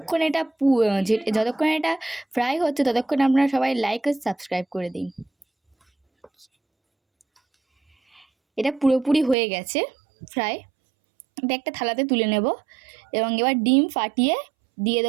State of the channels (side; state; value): left; drops out; at 9.3 s